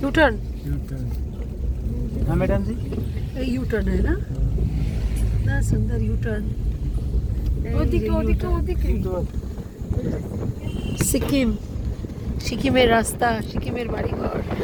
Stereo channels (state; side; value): identical; both; correlation 1.00